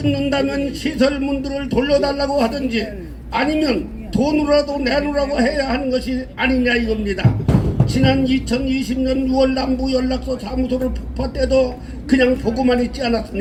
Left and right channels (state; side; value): identical; both; correlation 1.00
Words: 시설문들을 돌려달라고 하든지 아니면 돈으로라도 내놓으라고 해야 하는 것이 아니냐 이겁니다. 지난 2020년 6월 남부 연락소 사무소를 폭파 때도 그냥 보고만 있지